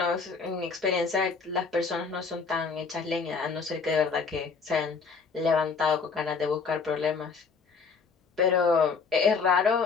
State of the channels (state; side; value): quieter; right; 5.1 dB